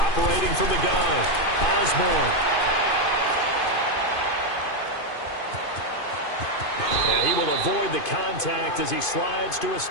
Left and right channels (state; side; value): late; right; 2.5 ms